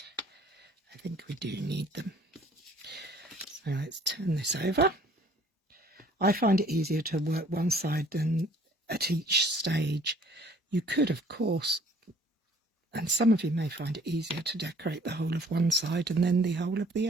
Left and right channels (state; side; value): normal; both; correlation 0.57